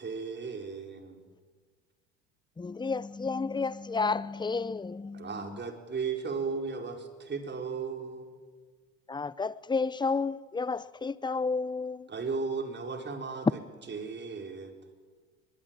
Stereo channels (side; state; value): both; normal; correlation 0.50